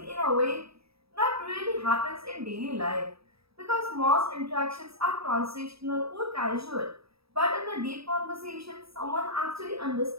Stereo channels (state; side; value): late; left; 0.77 ms